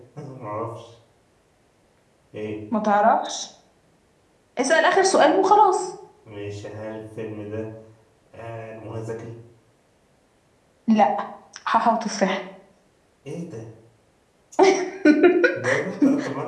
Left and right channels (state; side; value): identical; both; correlation 1.00